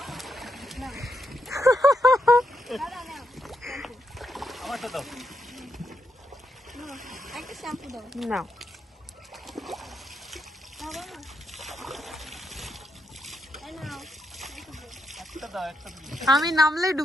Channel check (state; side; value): normal; both; correlation 0.81